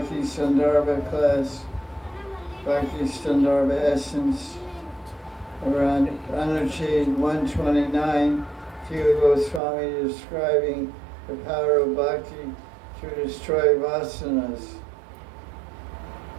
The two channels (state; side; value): drops out; left; at 9.6 s